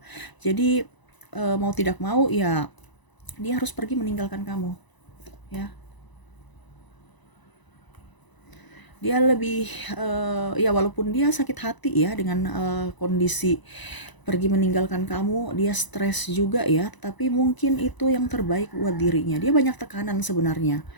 Jadi mau tidak mau ya dia harus pergi meninggalkan kamu ya. Dia lebih ya walaupun dia sakit hati ya dengan kondisi pergi meninggalkan kamu, dia stres juga ya, tapi mungkin itu yang terbaik buat dirinya. Dia banyak tekanan sebenarnya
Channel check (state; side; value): late; right; 1.0 ms